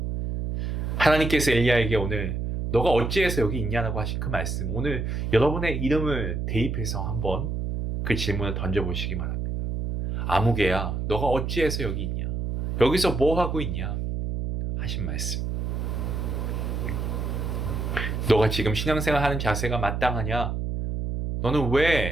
하나님께서 엘리야에게 오늘 너가 어찌해서 여기 있냐라고 하신 그 말씀, 오늘 여러분의 이름을 대입해서 한번 그 질문을 던져보시기 바랍니다. 아무개야, 너가 어찌해서 여기 있냐? 여기서 뭐 하고 있냐? 하신 말씀. 너가 지금 신앙생활 하는 자세가 마땅하냐? 너는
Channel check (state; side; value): noise; right; hum, 2 dB below the sound